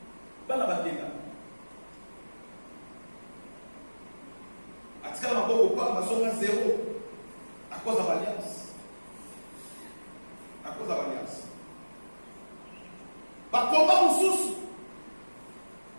bakenda. Atikala maboko kwa mazonga zéro à cause de l'alliance. À cause de l'alliance. Bakomba mususu.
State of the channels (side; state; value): both; inverted; correlation -1.00